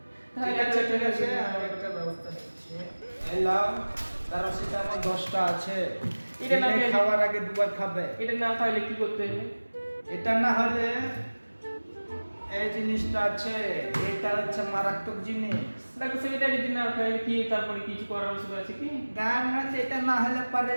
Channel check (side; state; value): both; inverted; correlation -1.00